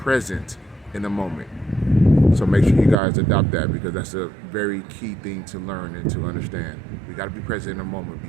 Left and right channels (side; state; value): left; drops out; at 3.0 s